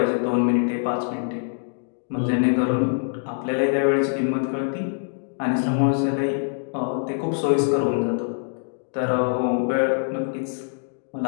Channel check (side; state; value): right; silent; digital silence